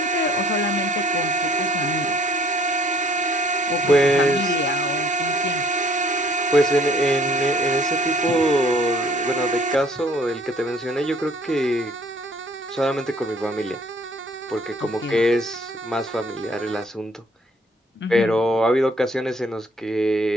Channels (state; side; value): normal; both; correlation 0.58